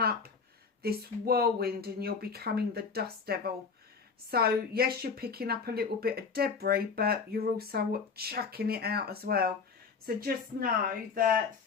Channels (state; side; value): quieter; right; 5.3 dB